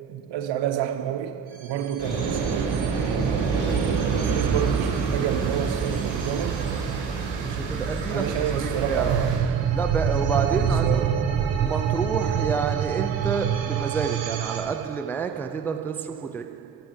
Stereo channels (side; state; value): left; quieter; 6.5 dB